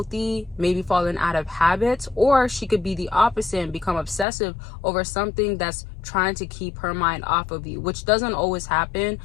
maybe falling out of habits, or she could be the opposite and become obsessive over something that's trying to keep her mind off of you, which doesn't always happen.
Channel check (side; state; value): right; drops out; at 4.2 s